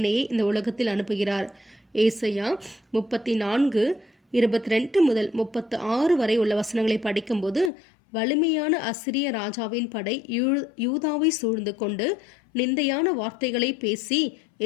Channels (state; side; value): drops out; right; at 7.7 s